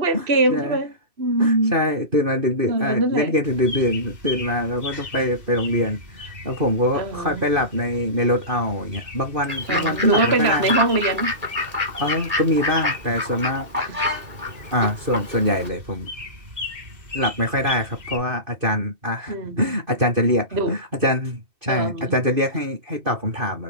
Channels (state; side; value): late; left; 2.6 ms